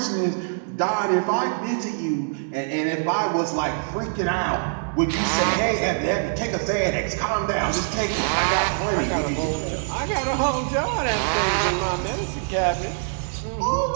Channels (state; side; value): silent; left; digital silence